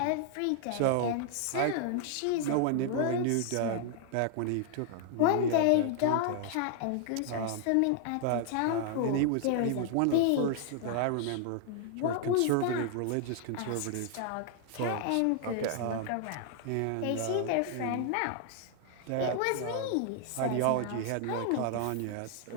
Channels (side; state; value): both; different; correlation 0.00